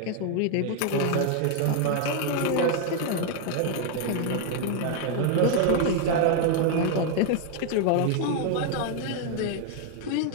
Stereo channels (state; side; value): different; both; correlation 0.00